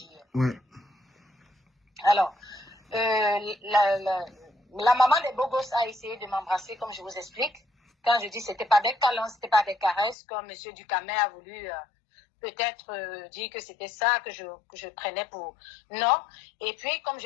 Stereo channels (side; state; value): right; drops out; at 10.2 s